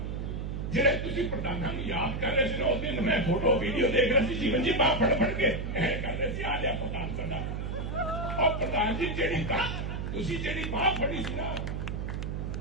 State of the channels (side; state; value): right; noise; hum, 3 dB below the sound